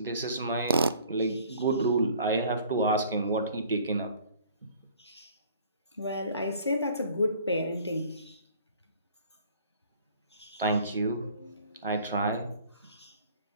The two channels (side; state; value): both; inverted; correlation -0.52